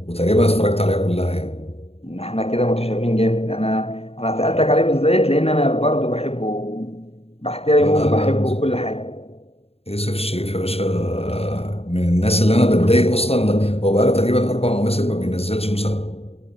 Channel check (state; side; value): late; right; 0.29 ms